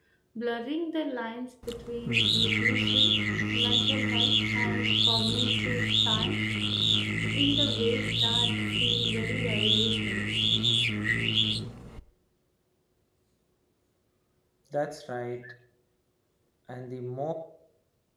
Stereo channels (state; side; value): identical; both; correlation 1.00